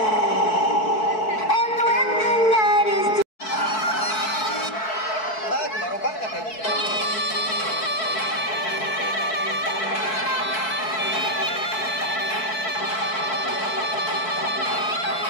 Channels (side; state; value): right; late; 4.6 ms